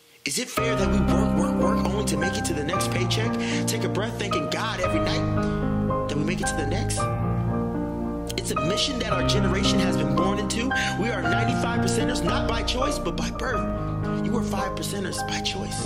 Is it fair that we work only to make it to the next paycheck? Take a breath thanking God every night that we make it to the next? It's a mission that our generation has been born into. We are 95%ers, not by choice, but by birth. You are 5%ers by choice,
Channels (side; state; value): both; identical; correlation 1.00